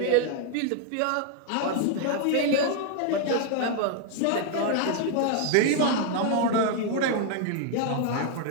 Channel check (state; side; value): different; both; correlation 0.00